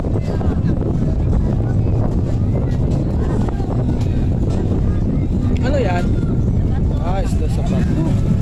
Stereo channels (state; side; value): identical; both; correlation 1.00